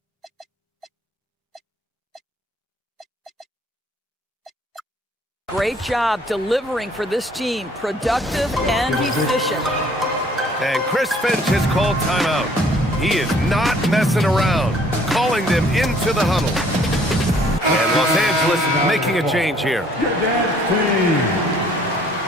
great job delivering for this team, productive and efficient. And Chris Finch has called timeout. He is not messing around, calling them into the huddle. And Los Angeles making a change here.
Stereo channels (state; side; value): normal; both; correlation 0.59